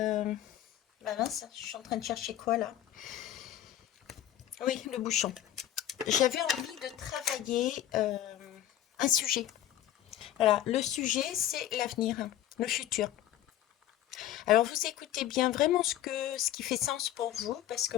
Bah mince, je suis en train de chercher quoi là? Oui, le bouchon. J'avais envie de travailler un sujet. Voilà, le sujet c'est l'avenir, le futur. Alors vous écoutez bien vraiment ce qui fait sens pour vous, parce que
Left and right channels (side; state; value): right; quieter; 12.3 dB